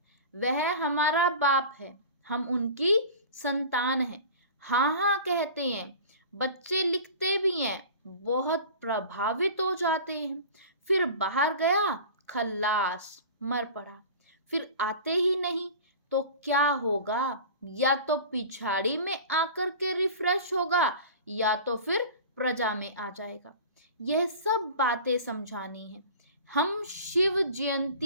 वह हमारा बाप है, हम उनकी संतान हैं। हाँ हाँ कहते हैं, बच्चे लिखते भी हैं, बहुत प्रभावित हो जाते हैं। फिर बाहर गया, खल्लास, मर पड़ा। फिर आते ही नहीं तो क्या होगा? या तो पिछाड़ी में आकर के रिफ्रेश होगा, या तो फिर प्रजा में आ जाएगा। यह सब बातें समझानी है। हम शिव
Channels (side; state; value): both; inverted; correlation -0.38